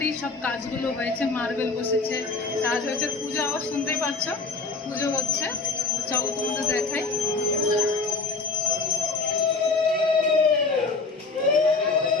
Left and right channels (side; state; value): right; quieter; 4.0 dB